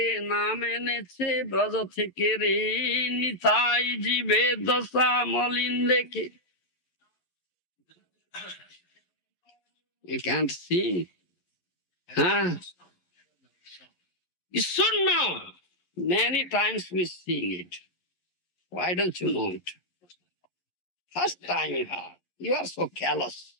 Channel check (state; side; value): late; right; 11 ms